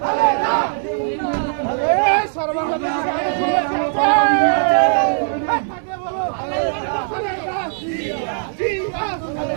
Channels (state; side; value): silent; left; 65 dB below the other